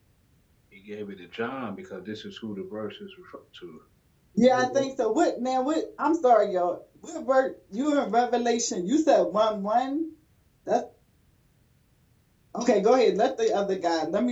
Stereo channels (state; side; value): identical; both; correlation 1.00